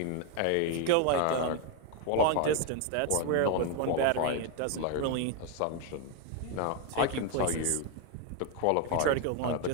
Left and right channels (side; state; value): both; different; correlation 0.01